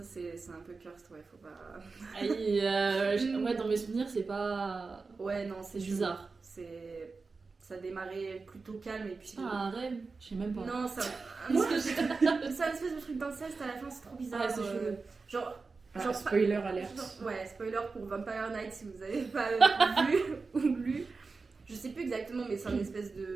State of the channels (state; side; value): quieter; left; 4.3 dB